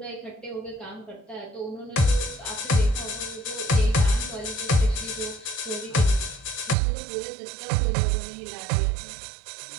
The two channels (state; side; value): drops out; left; at 6.8 s